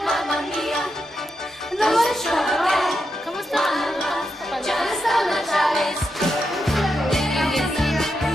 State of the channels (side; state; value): both; normal; correlation 0.85